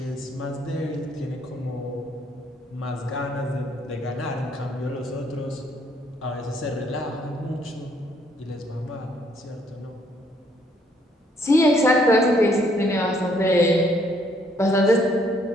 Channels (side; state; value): both; normal; correlation 0.67